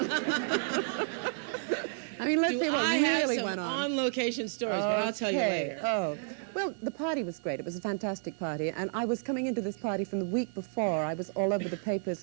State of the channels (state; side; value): silent; left; digital silence